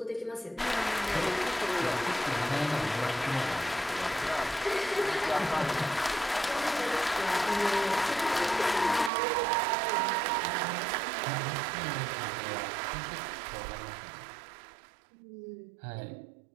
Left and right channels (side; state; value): left; drops out; at 9.1 s